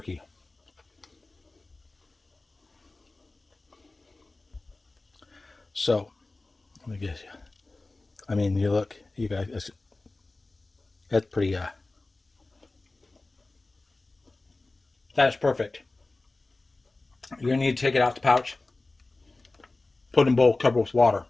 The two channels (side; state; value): right; quieter; 3.2 dB